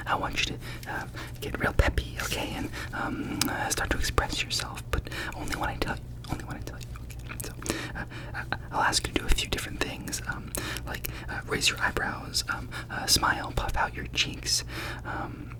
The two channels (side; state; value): both; identical; correlation 1.00